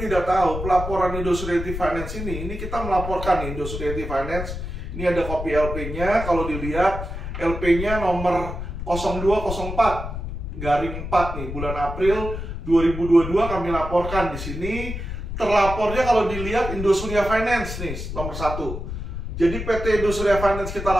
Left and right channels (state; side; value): noise; left; rumble, 6 dB below the sound